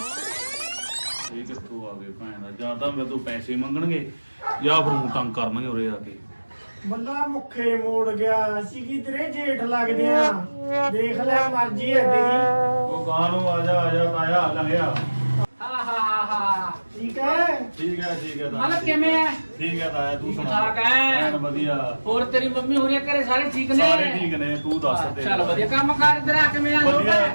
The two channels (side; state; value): both; inverted; correlation -1.00